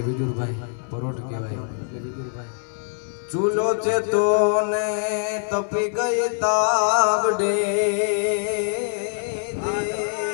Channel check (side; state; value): right; silent; 59 dB below the other